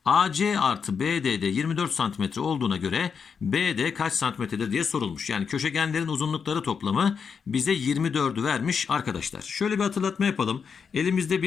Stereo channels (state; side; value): quieter; right; 6.2 dB